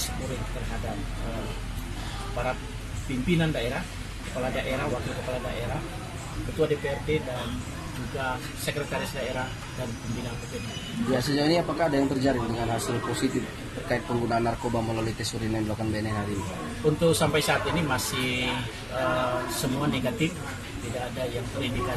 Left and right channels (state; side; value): identical; both; correlation 1.00